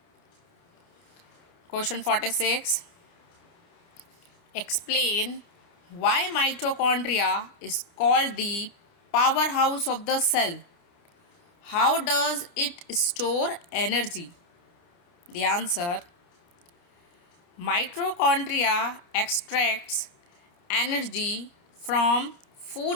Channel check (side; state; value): right; late; 30 ms